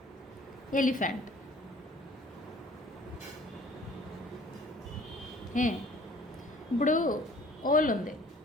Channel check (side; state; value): both; normal; correlation 0.52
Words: elephant. ఇప్పుడు ఓల్ ఉంది